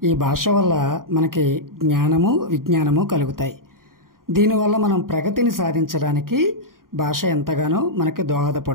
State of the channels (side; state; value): left; late; 0.91 ms